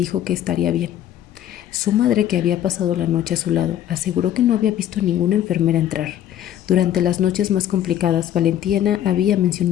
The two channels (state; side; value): quieter; right; 11.3 dB